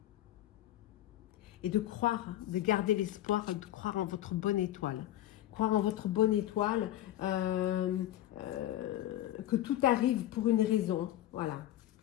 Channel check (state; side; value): quieter; right; 13.5 dB